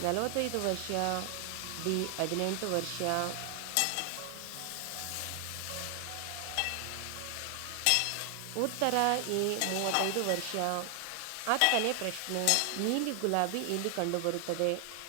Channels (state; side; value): different; both; correlation 0.00